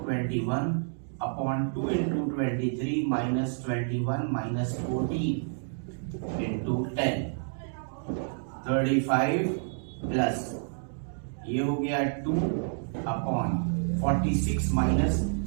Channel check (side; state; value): left; silent; digital silence